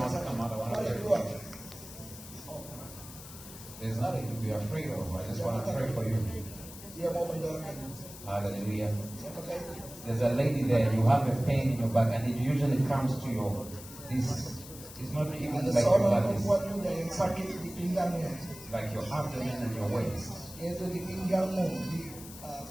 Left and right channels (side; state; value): left; noise; hiss, 15 dB below the sound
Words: sakit. come on, I want to Mari pray berdoa. for you. There's nothing to be afraid of. I just want to pray for you. Dia mau mendoakan. Hallelujah. Siapakah itu? There's a lady there, you have a pain in your back, and it usually comes to your, this, it's not even Ada like your seorang back, it's perempuan muda yang sakit di pinggangnya, like your abdomen and your waist. yaitu di pinggangmu, di